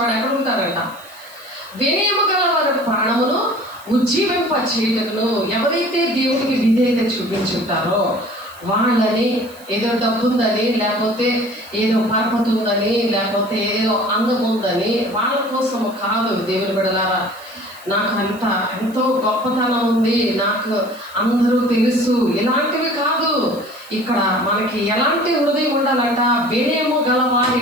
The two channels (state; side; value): noise; right; hiss, 23 dB below the sound